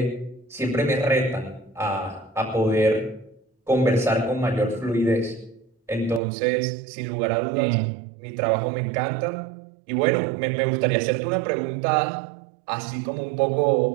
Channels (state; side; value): drops out; left; at 6.2 s